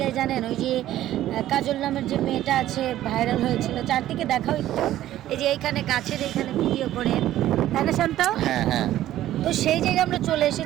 জানেন ওই যে কাজল নামের যে মেয়েটা আছে ভাইরাল হয়েছিল, চারদিকে দেখাও একটু, এই যে এইখানে গাছের এইখানে ভিডিও করে, তাই না শান্ত? হ্যাঁ হ্যাঁ। তো সেই জায়গায় আমরা চলে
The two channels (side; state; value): left; quieter; 13.4 dB